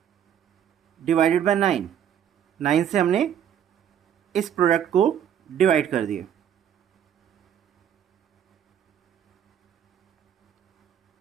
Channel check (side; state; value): left; quieter; 9.4 dB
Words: divided by 9। 9 से हमने इस प्रोडक्ट को डिवाइड कर दिया।